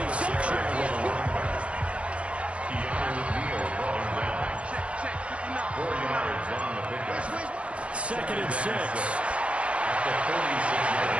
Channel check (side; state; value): left; late; 0.061 ms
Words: line. 4 yards on the pickup. 2nd and 6. At the 46-yard He